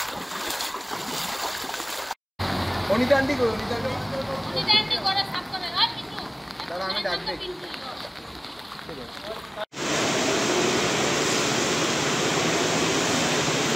অনিতা আন্টি কো অনিতা আন্টি করে সাফ করে আর কিছু দাঁড়া আমি ডাক দেই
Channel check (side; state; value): both; identical; correlation 1.00